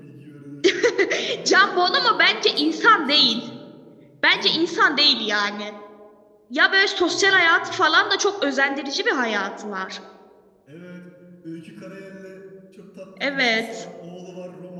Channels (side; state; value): both; identical; correlation 1.00